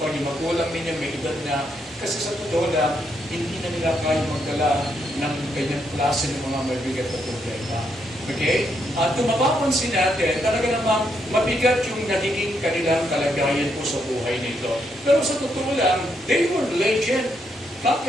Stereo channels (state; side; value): normal; both; correlation 0.77